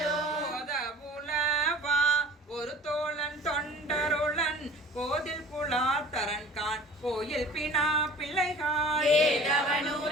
புலவா ஒரு தோழன் தொண்டருளன் கோதில் குலாத்தரன் கான் கோயில் பினா பிள்ளைகாள்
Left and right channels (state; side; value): normal; both; correlation 0.45